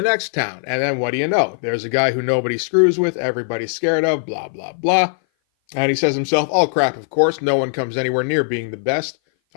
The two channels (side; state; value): right; silent; 58 dB below the other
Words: next town. And then what do you know? There's a guy who nobody screws with, everybody's scared of, blah, blah, blah. And he says himself, all crap, of course. No one comes anywhere near being the best.